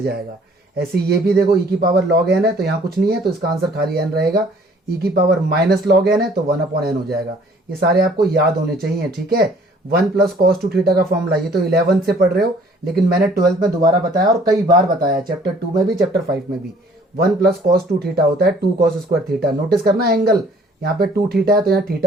जाएगा। ऐसे ये भी देखो e⁻log n है तो यहाँ कुछ नहीं है, तो इसका आंसर खाली n रहेगा। e⁻−log n है तो 1/n हो जाएगा। ये सारे आपको याद होने चाहिए, ठीक है। 1 + cos 2 थीटा का फॉर्मूला, ये तो 11th से पढ़ रहे हो, लेकिन मैंने 12th में दोबारा बताया और कई बार बताया, चैप्टर 2 में भी चैप्टर 5 में भी। 1 + cos 2 थीटा होता है 2 cos स्क्वायर थीटा। नोटिस करना एंगल, यहाँ पे 2 थीटा है तो यहाँ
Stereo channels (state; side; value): normal; both; correlation 0.56